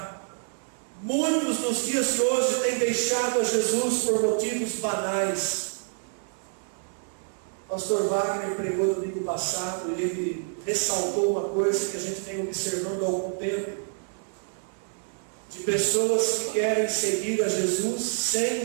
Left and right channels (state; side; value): silent; left; digital silence